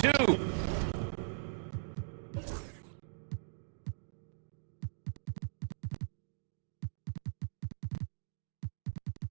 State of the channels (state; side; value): silent; left; digital silence